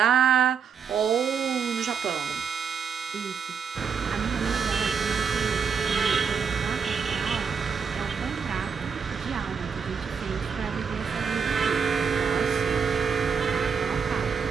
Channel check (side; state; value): left; quieter; 6.3 dB